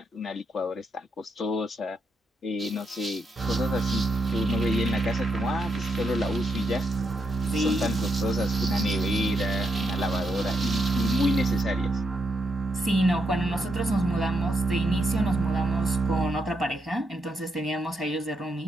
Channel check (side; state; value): both; normal; correlation 0.81